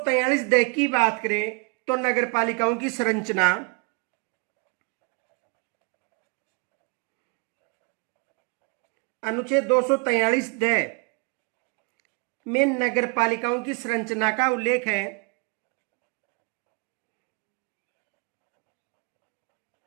दे की बात करें तो नगर पालिकाओं की संरचना अनुच्छेद 243 दे में नगर पालिकाओं की संरचना का उल्लेख है।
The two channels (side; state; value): left; quieter; 32.9 dB